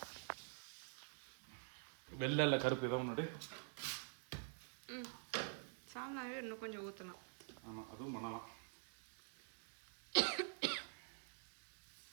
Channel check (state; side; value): silent; left; digital silence